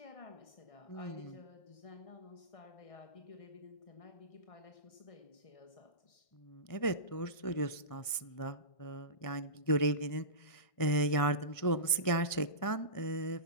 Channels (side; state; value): right; late; 1.6 ms